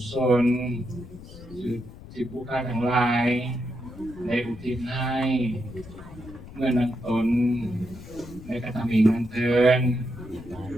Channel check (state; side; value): noise; left; rumble, 16 dB below the sound